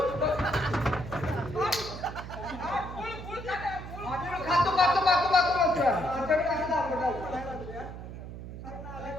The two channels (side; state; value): right; noise; hum, 10 dB below the sound